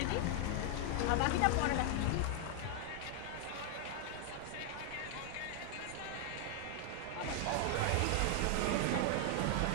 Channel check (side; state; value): both; different; correlation 0.00